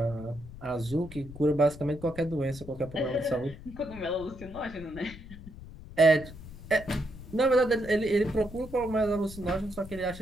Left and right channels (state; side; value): noise; left; rumble, 15 dB below the sound